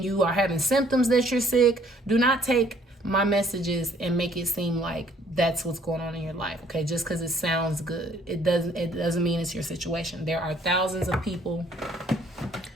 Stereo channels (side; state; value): both; normal; correlation 0.61